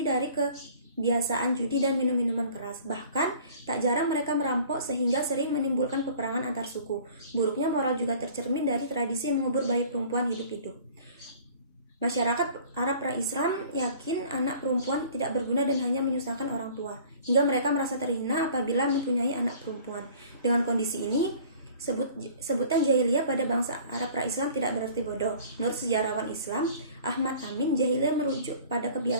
dari kebiasaan judi dan minum-minuman keras. Bahkan tak jarang mereka merampok sehingga sering menimbulkan peperangan antar suku. Buruknya moral juga tercermin dari tradisi mengubur bayi perempuan hidup-hidup. Masyarakat Arab pra-Islam yakin anak perempuan tidak berguna dan hanya menyusahkan orang tua, hingga mereka merasa terhina apabila mempunyai anak perempuan. Dengan kondisi ini, sebutan jahiliyah pada bangsa Arab pra-Islam tidak berarti bodoh. Menurut sejarawan Islam Ahmad Amin, jahiliyah merujuk pada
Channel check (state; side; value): inverted; both; correlation -0.49